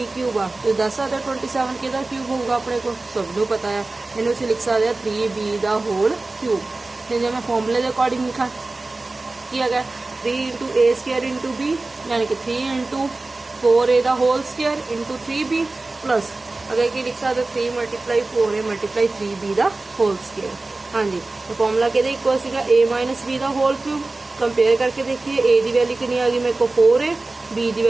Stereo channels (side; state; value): left; quieter; 3.2 dB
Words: क्यूब आ तो दस सकते 27 कि क्यूब होगा अपने को सबनों पता है, इन्हें उसे लिख सकते हैं 3b का होल क्यूब। फिर जब मैं फॉर्मूले के अकॉर्डिंग लिखा कि अगर 3 इंटू ए स्केयर इंटू बी यानी कि 3 इंटू 4a का whole square into 3b plus अगर कि लिख सकते 3 मल्टीप्लाई 4a मल्टीप्लाई 3b का होल स्केयर। हाँ जी, तो फॉर्मूला कहते इक्वल सीगा a माइनस बी का होल क्यूब। कंपेयर करके देखिए a की वैल्यू कितनी आ गई मेरे को 4a, b की